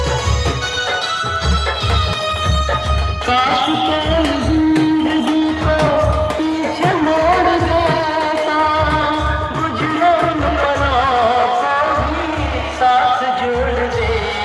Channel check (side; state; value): both; identical; correlation 1.00